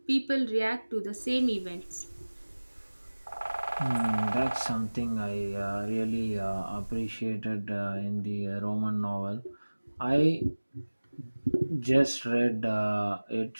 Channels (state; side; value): inverted; both; correlation -1.00